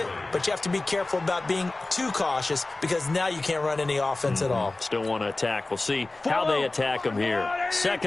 but you have to be careful about being too cautious because now you can't run any offense at all. Still want to attack. We'll see how they attack them here.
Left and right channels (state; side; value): quieter; right; 3.0 dB